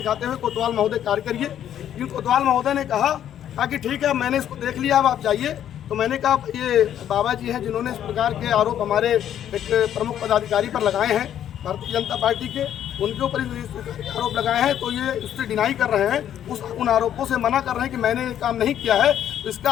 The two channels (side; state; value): right; quieter; 10.4 dB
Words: हुए कोतवाल महोदय कार्य करिए। लेकिन कोतवाल महोदय ने कहा कि ठीक है, मैंने इसको देख लिया, अब आप जाइए। तो मैंने कहा ये बाबा जी हैं जिन्होंने इस प्रकार के आरोप हमारे एक प्रमुख पदाधिकारी पर लगाए हैं भारतीय जनता पार्टी के, उनके ऊपर इस प्रकार के आरोप लगाए हैं। तो ये उससे डिनाई कर रहे हैं, उन आरोपों से मना कर रहे हैं कि मैंने ये काम नहीं किया है। तो इसका